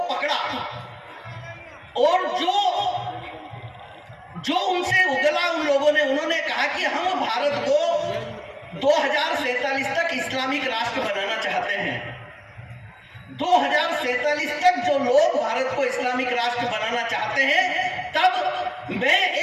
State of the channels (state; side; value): identical; both; correlation 1.00